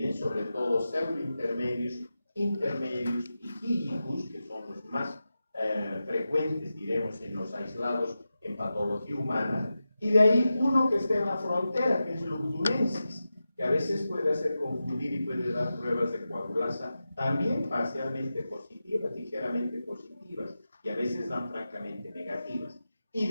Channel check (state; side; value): inverted; both; correlation -0.92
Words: sobre todo pseudointermedius, intermedius y filicus, que son los más frecuentes, diremos, en los aislados en patología humana, y de ahí uno que está en la frontera, que es lugdunensis, que a veces puede hacer confundir y puede dar pruebas de coagulasa también parcialmente positivas, ligeramente positivas, y a veces dan francamente negativas. Y